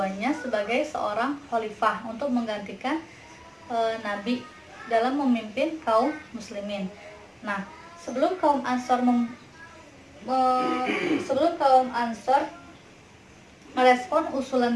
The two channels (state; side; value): identical; both; correlation 1.00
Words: sebagai seorang khalifah untuk menggantikan Nabi dalam memimpin kaum muslimin. Nah, sebelum kaum Ansor merespon